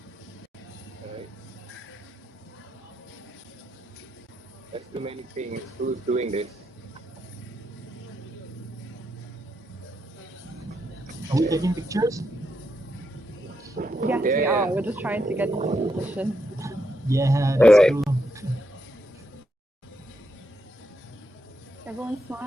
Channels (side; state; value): both; normal; correlation 0.81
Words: Alright. There's too many things. Who's doing this? Are we taking pictures? Yes, we Yeah. are. We're just trying to get into position. Yeah, that's Alright. cool. Everyone